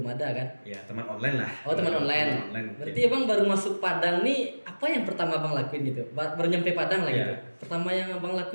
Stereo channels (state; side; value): inverted; both; correlation -1.00